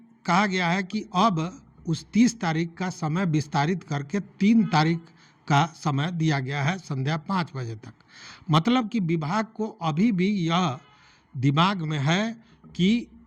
कहा गया है कि अब उस 30 तारीख का समय विस्तारित करके 3 तारीख का समय दिया गया है संध्या 5 बजे तक। मतलब कि विभाग को अभी भी यह दिमाग में है कि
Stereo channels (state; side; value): identical; both; correlation 1.00